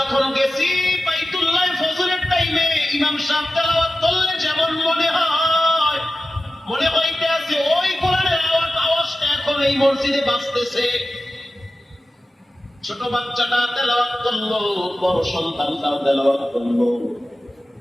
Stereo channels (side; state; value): both; normal; correlation 0.94